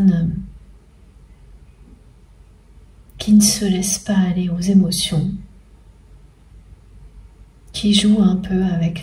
qui ne se laisse pas aller aux émotions, qui joue un peu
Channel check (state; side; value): identical; both; correlation 1.00